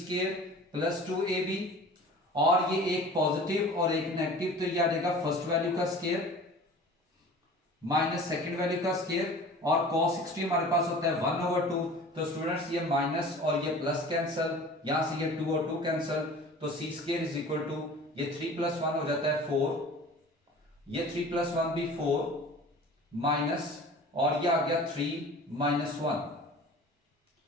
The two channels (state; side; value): normal; both; correlation 0.42